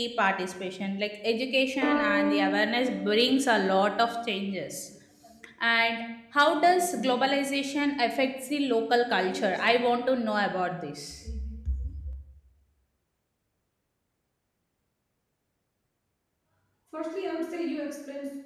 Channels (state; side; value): identical; both; correlation 1.00